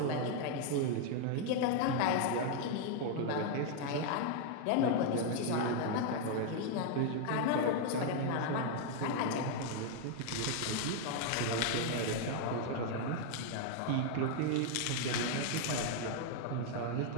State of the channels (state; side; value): different; both; correlation 0.00